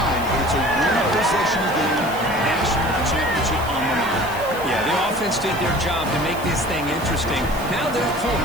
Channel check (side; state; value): right; noise; hiss, 16 dB below the sound